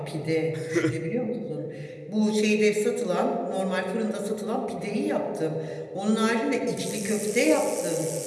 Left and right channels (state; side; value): identical; both; correlation 1.00